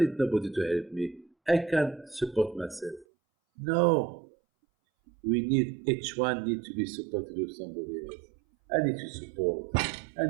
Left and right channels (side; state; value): left; drops out; at 3.1 s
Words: nobody to help me. I can support myself. No. Each one needs to be supported with somebody else. I need to support. I